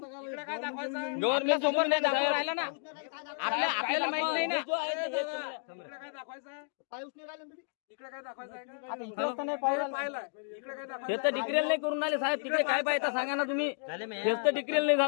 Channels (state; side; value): silent; right; digital silence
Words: गव्हर्नमेंट समोर नाही दाखवून राहिला ना आपल्याला माहित नाही ना इकडे काय दाखवायचं आहे हे तर डिक्रेल नाही करून आले साहेब तिकडे काय पाहिजे सांगा ना तुम्ही हेच तर डिक्रेल नाही